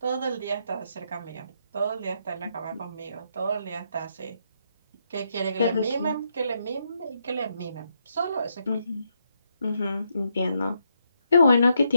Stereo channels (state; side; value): inverted; both; correlation -0.78